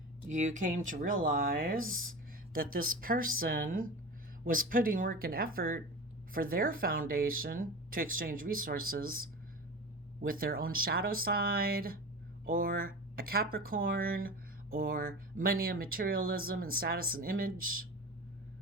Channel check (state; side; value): normal; both; correlation 0.30